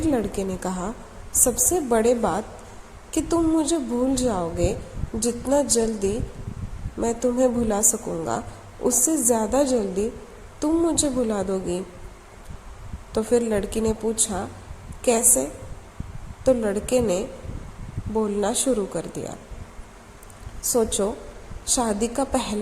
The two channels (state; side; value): identical; both; correlation 1.00